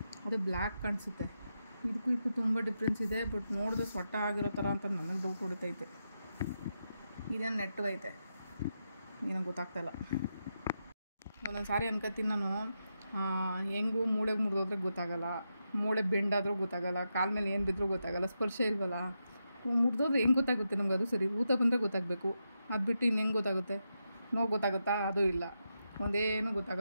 ಅದು ಬ್ಲ್ಯಾಕ್ ಕಾಣಿಸುತ್ತೆ. ಇದಕ್ಕೂ ತುಂಬ ಡಿಫ್ರೆನ್ಸ್ ಇದೆ. ಬಟ್ ನೋಡಿದ್ರೆ ಸೊಟ್ಟ ಆಗಿರೋ ಥರ ಅಂತ ನನಗೆ ಡೌಟ್ ಹೊಡಿತೈತೆ. ಇದೇನು ನೆಟ್ಟಗೈತೆ ಏನೋ ಗೊತ್ತಾಗ್ತಾಯಿಲ್ಲ. ಒಂದೊಂದು ಸಾರಿ ಅನ್ಕೋತೀನಿ ನಾನು, ಹೆಂಗೂ ಮೂಳೆಗೆ ಮುರಿದೋದ್ರೆ ಗೊತ್ತಾಗಲ್ಲ, ಮೂಳೆ ಬೆಂಡಾದರೂ ಗೊತ್ತಾಗಲ್ಲ, ಕಾಲ ಮೇಲೆ ಏನು ಬಿದ್ದರೂ ಗೊತ್ತಾಗಲ್ಲ, ಸ್ಪರ್ಶ ಇಲ್ವಲ್ಲ. ಮುರಿದೋದ್ರೆ ಹೆಂಗೆ ಗೊತ್ತಾಗುತ್ತೆ ನಮ್ಗೆ? ಅದು ಸರಿ, ಊತ ಬಂದರೆ ಗೊತ್ತಾಗಬೇಕು, ಅದು ಬಿಟ್ಟು ಇನ್ನು ಹೆಂಗೆ ಗೊತ್ತಾಗುತ್ತೆ? ನೋವು ಗೊತ್ತಾಗುತ್ತಾ? ಅದು ಇಲ್ಲ, ಒಂದೇನು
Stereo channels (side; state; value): both; inverted; correlation -0.86